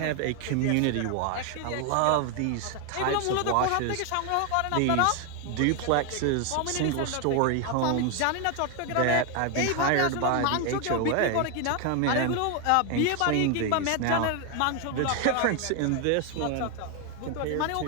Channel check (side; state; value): both; different; correlation 0.01